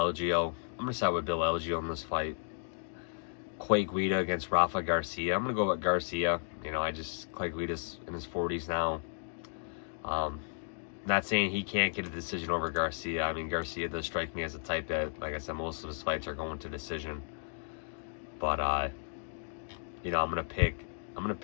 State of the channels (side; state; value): right; silent; digital silence